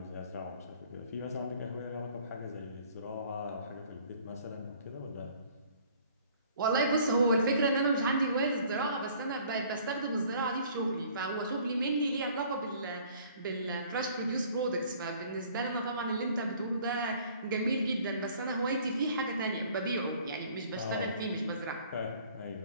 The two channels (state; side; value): inverted; both; correlation -0.55